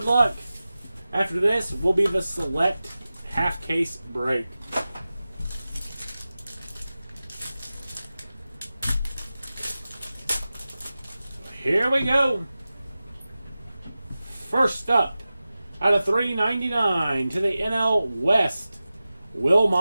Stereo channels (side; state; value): both; inverted; correlation -0.95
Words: luck. After this will be the select half case break. Here we go. First up, out of $3.99 to the NL West, Will